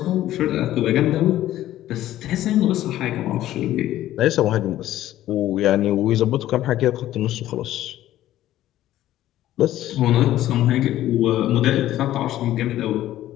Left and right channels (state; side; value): quieter; right; 13.7 dB